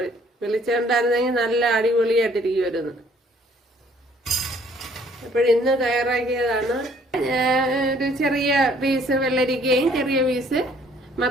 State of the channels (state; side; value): normal; both; correlation 0.60